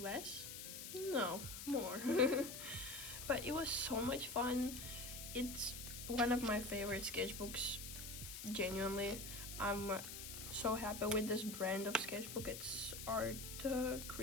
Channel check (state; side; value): noise; left; hiss, 8 dB below the sound